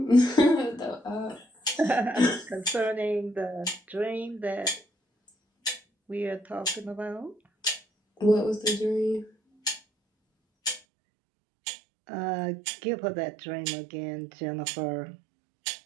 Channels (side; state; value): left; drops out; at 10.8 s